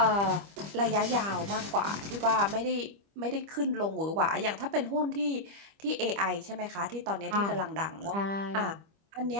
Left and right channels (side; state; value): left; late; 25 ms